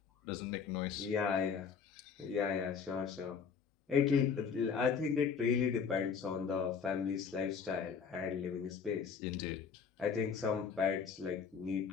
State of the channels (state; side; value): quieter; right; 6.3 dB